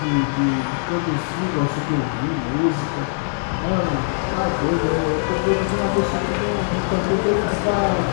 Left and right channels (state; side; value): silent; right; 65 dB below the other